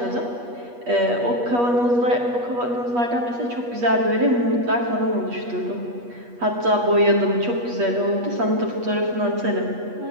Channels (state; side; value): late; left; 8.3 ms